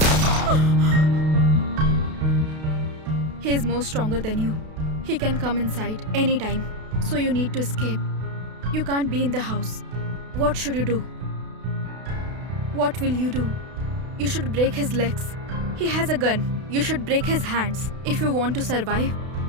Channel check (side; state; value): left; late; 32 ms